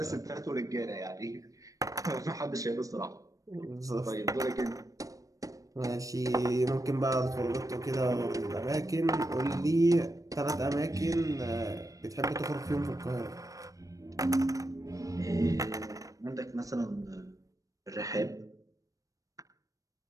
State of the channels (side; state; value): left; late; 0.16 ms